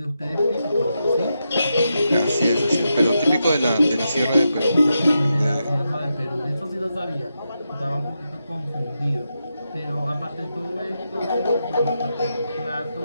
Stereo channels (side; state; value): both; inverted; correlation -0.86